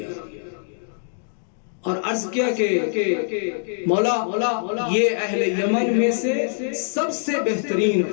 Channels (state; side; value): silent; right; 63 dB below the other